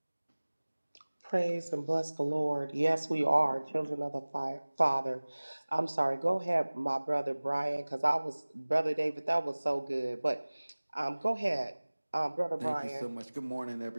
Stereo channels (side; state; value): both; inverted; correlation -1.00